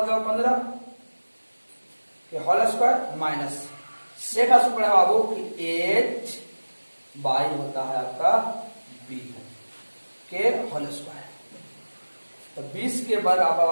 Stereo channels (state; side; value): inverted; both; correlation -1.00